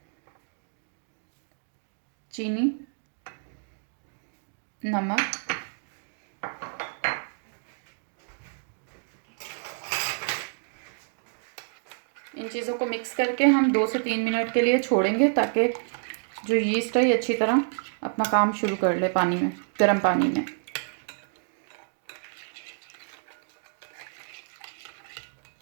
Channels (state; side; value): silent; left; digital silence